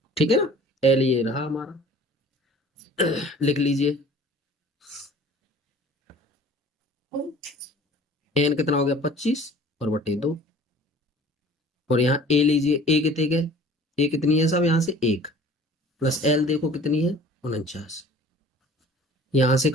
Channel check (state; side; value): normal; both; correlation 0.47